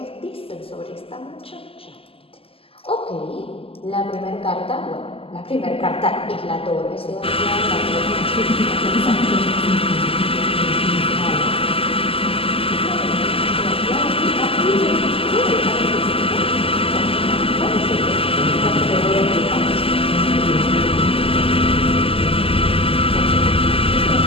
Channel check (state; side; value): late; right; 0.27 ms